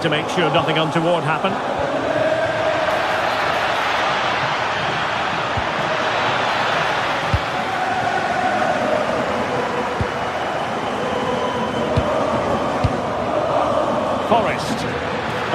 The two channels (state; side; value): identical; both; correlation 1.00